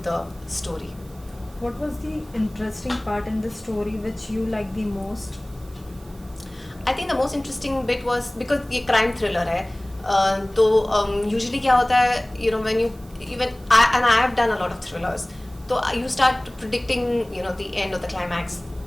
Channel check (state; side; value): noise; right; hiss, 27 dB below the sound